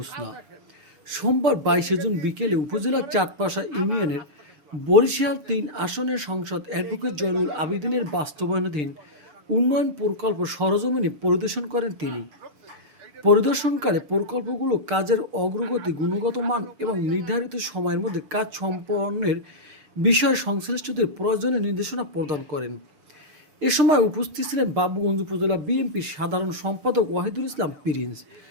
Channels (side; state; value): left; late; 6.6 ms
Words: সোমবার 22 জুন বিকেলে উপজেলার চাঁদপাশা ইউনিয়নের বরিশাল ৩ আসনের সংসদ অ্যাডভোকেট জয়নুল আবেদিনের বাস্তবায়নাধীন উন্নয়ন প্রকল্প সরজমিনে পরিদর্শন করেন তিনি। পরিদর্শনকালে প্রকল্পগুলো কাজের অগ্রগতি, গুণগত মান এবং নির্ধারিত সময়ের মধ্যে কাজ সম্পন্নের বিষয়ে সংশ্লিষ্টদের প্রয়োজনীয় নির্দেশনা প্রদান করেন। এ সময় উপস্থিত ছিলেন বাবুগঞ্জ উপজেলা বিএনপির সাধারণ সম্পাদক ওয়াহিদুল ইসলাম প্রিন্স,